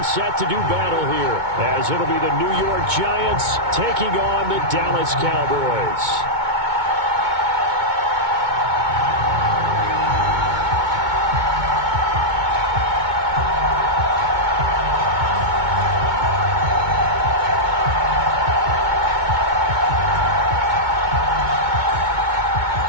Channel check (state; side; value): late; left; 2.2 ms